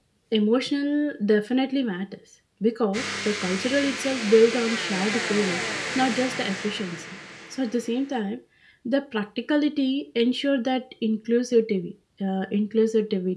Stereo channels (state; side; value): identical; both; correlation 1.00